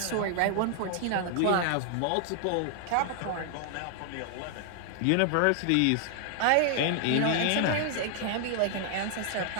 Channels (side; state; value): both; different; correlation 0.00